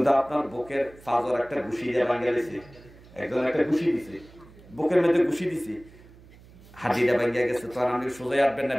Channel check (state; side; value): noise; right; hum, 23 dB below the sound